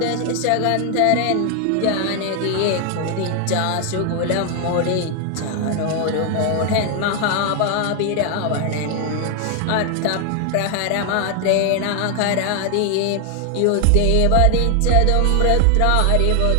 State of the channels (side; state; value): both; different; correlation 0.00